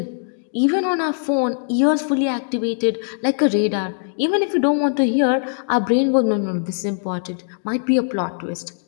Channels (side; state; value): right; silent; digital silence